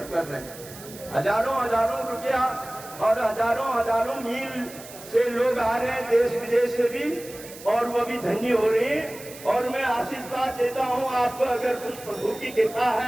कर रहे हैं। हजारों हजारों रुपया और हजारों हजारों मील से लोग आ रहे हैं, देश विदेश से भी, और वो भी धन्य हो रहे हैं। और मैं आशीर्वाद देता हूँ आपको, अगर कुछ प्रभु की कृपा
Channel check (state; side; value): noise; right; hiss, 16 dB below the sound